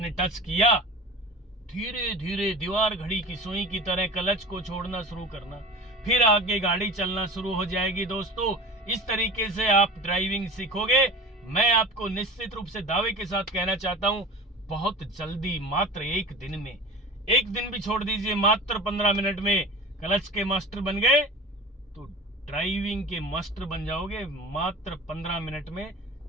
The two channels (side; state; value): both; normal; correlation 0.35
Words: टच किया, धीरे धीरे दीवार घड़ी की सुई की तरह क्लच को छोड़ना शुरू करना, फिर आगे गाड़ी चलना शुरू हो जाएगी। दोस्तों इस तरीके से आप ड्राइविंग सीखोगे। मैं आपको निश्चित रूप से दावे के साथ कहना चाहता हूं, बहुत जल्दी, मात्र 1 दिन में, 1 दिन भी छोड़ दीजिए, मात्र 15 मिनट में क्लच के मास्टर बन गए तो ड्राइविंग के मास्टर बन जाओगे मात्र 15 मिनट में